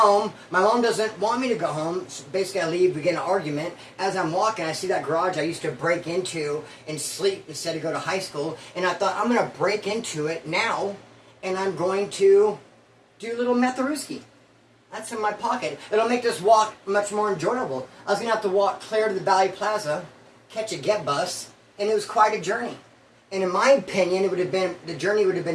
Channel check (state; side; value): identical; both; correlation 1.00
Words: My mom doesn't want me to go home. So basically, I leave, we get in an argument. As I'm walking, I see that garage I used to break into and sleep instead of go to high school. And I thought, I'm going to break into it now, and I'm going to do a little metharuski. That's in my pocket. It'll make this walk much more enjoyable. I was going to have to walk clear to the Valley Plaza, catch a get bus, and it was quite a journey. And in my opinion, the journey would have